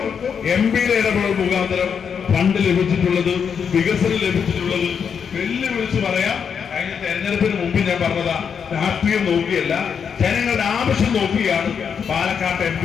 MPയുടെ ഇടപെടൽ മുഖാന്തരം ഫണ്ട് ലഭിച്ചിട്ടുള്ളത്, വികസനം ലഭിച്ചിട്ടുള്ളത്. വെല്ലുവിളിച്ച് പറയാം, കഴിഞ്ഞ തെരഞ്ഞെടുപ്പിന് മുമ്പ് ഞാൻ പറഞ്ഞതാ, രാഷ്ട്രീയം നോക്കിയല്ല ജനങ്ങളുടെ ആവശ്യം നോക്കിയാണ് പാലക്കാട്ട് MP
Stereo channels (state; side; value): quieter; right; 6.9 dB